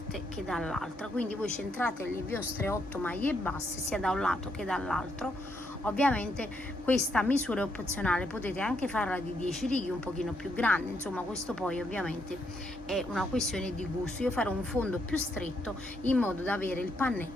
che dall'altra, quindi voi centrate le vostre 8 maglie basse sia da un lato che dall'altro. Ovviamente questa misura è opzionale, potete anche farla di 10 righe un pochino più grande, insomma questo poi ovviamente è una questione di gusto. Io farò un fondo più stretto in modo da avere il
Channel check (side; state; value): both; normal; correlation 0.76